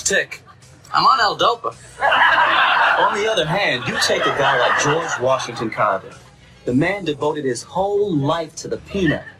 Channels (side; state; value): both; identical; correlation 1.00